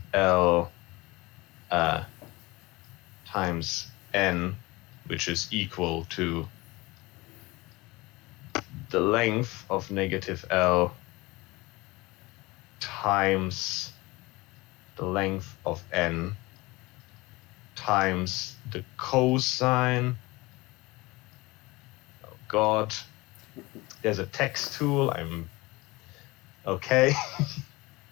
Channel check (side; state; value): right; quieter; 22.2 dB